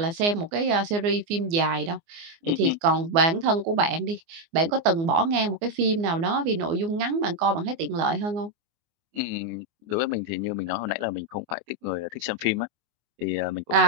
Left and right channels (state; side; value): late; left; 24 ms